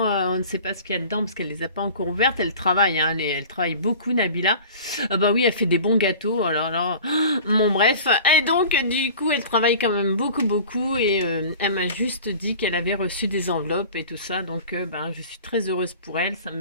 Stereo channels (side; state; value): both; inverted; correlation -0.41